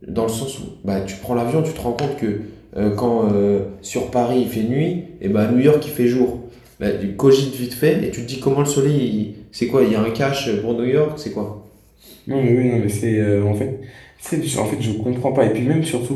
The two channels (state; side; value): identical; both; correlation 1.00